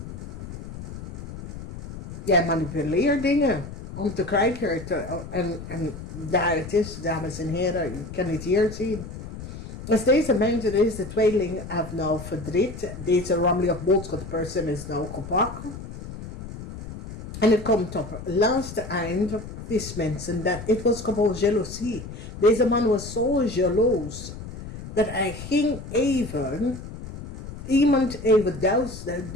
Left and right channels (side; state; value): left; noise; rumble, 11 dB below the sound